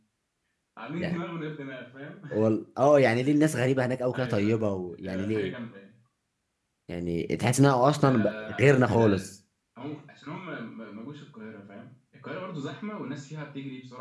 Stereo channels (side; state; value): both; identical; correlation 1.00